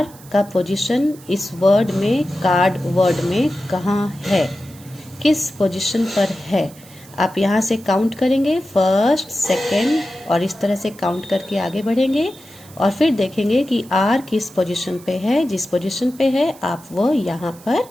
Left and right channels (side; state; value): right; noise; hiss, 22 dB below the sound